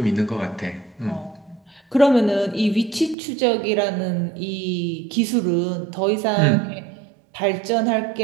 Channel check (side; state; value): left; drops out; at 3.2 s